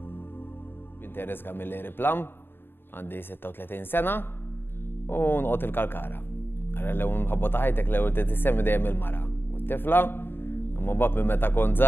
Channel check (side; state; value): right; late; 0.10 ms